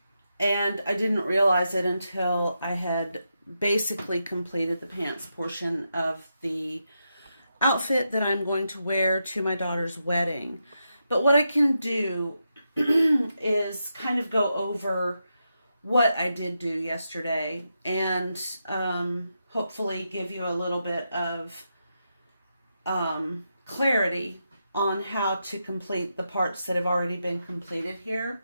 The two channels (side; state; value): both; inverted; correlation -0.85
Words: and I didn't realize it until I had basically completed the pants portion of the outfit that I'm going to wear to my daughter's wedding. But what I can do is kind of go over what I did do yesterday and hopefully give you a little bit of clarity on how to complete the parts that have already been completed here.